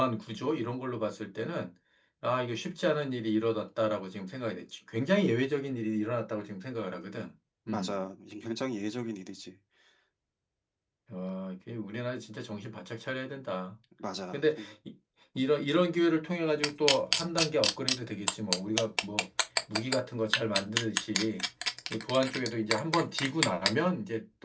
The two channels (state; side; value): identical; both; correlation 1.00